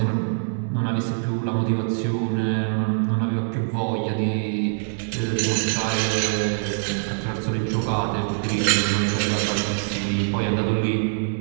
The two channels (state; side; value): silent; left; digital silence